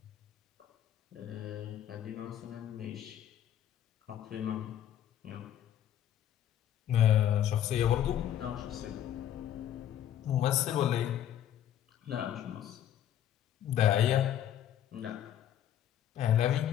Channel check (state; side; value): quieter; right; 10.7 dB